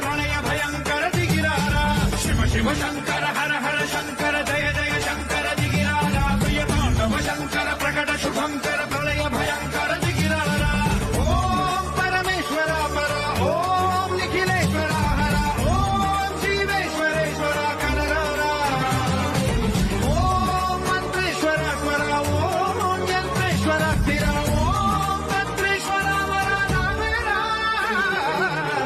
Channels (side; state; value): both; identical; correlation 1.00